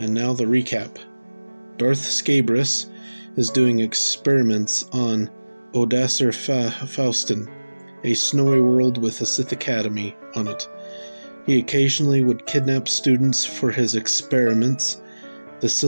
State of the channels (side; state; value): both; inverted; correlation -1.00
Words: now the recap. Darth Scabris is doing experiments on Odassar Faustin, a snowy world with a Sith Academy on it. He occasionally would kidnap students for his experiments. The